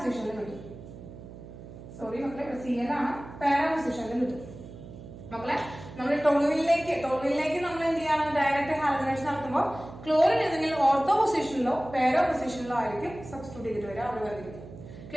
കിട്ടും. സോറി മക്കളെ, Cl ആണ്, പാരാ പൊസിഷനിൽ കിട്ടും മക്കളെ. നമ്മൾ ടോളുവിനിലേക്ക് നമ്മൾ എന്ത് ചെയ്യണം? ഡയറക്റ്റ് ഹാലജനേഷൻ നടത്തുമ്പോൾ ക്ലോറിൻ ഏതെങ്കിലും ഓർത്തോ പൊസിഷനിലോ പാരാ പൊസിഷനിലോ ആയിരിക്കും സബ്സ്റ്റിറ്റ്യൂട്ട് ചെയ്തിട്ട് വരിക, അവിടെ വന്നിരിക്കും.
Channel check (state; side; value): noise; right; hum, 15 dB below the sound